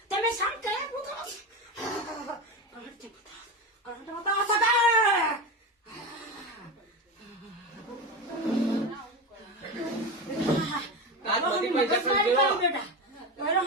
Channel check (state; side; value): normal; both; correlation 0.20